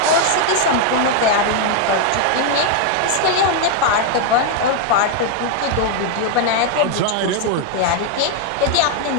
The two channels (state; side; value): different; both; correlation 0.01